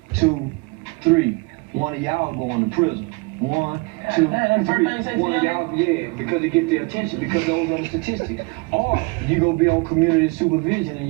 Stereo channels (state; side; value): quieter; left; 27.7 dB